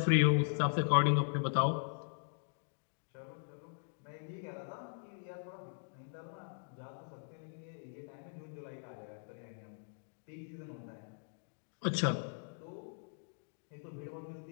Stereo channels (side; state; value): right; silent; digital silence